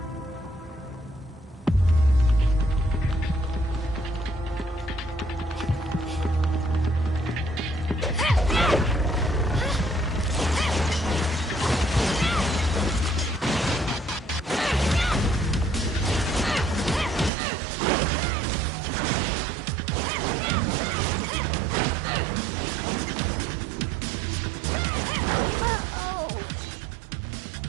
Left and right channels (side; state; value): left; drops out; at 17.3 s